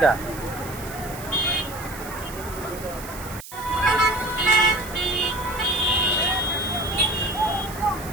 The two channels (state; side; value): noise; right; hiss, 14 dB below the sound